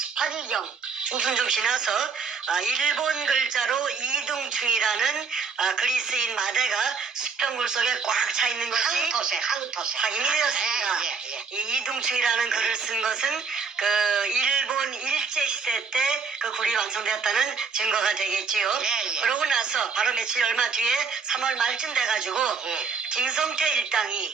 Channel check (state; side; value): quieter; left; 5.4 dB